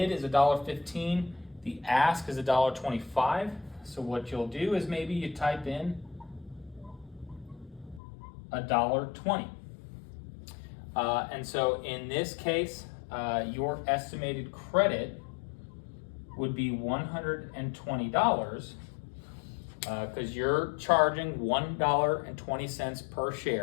is $1.15, the ask is $1.25. So what you'll do is maybe you type in $1.20. And so in this case, your estimated credit would be $120 because you're charging $1.20 per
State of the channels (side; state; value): right; drops out; at 8.0 s